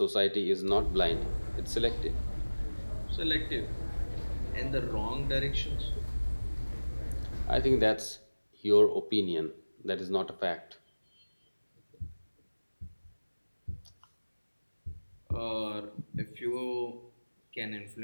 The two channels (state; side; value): inverted; both; correlation -1.00